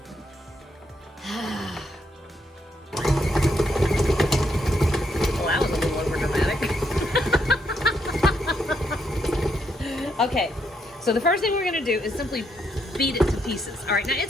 Well, that was a little over dramatic. Okay. So the first thing we're gonna do is simply beat it to pieces. All right, now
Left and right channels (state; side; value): normal; both; correlation 0.76